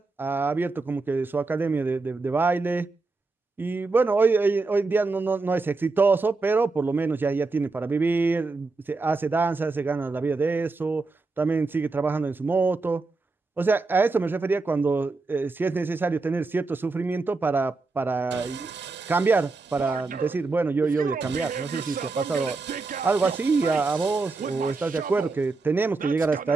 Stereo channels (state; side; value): quieter; left; 3.8 dB